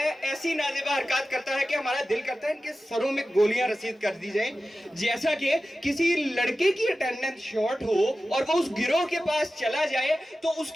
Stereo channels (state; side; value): normal; both; correlation 0.94